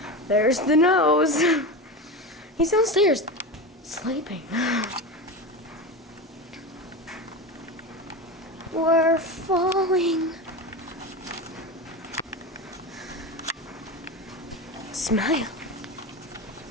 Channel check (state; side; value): normal; both; correlation 0.23